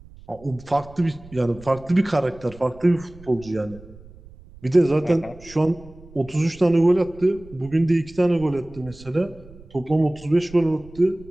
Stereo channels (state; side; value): noise; right; rumble, 21 dB below the sound